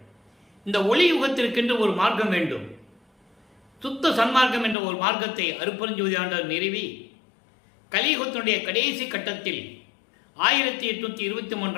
இந்த ஒளி யுகத்திற்கென்று ஒரு மார்க்கம் வேண்டும். சுத்த சன்மார்க்கம் என்ற ஒரு மார்க்கத்தை அருட்பெருஞ்சோதி ஆண்டவர் நிறுவி கலியுகத்தினுடைய கடைசி கட்டத்தில்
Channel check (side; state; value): right; drops out; at 4.8 s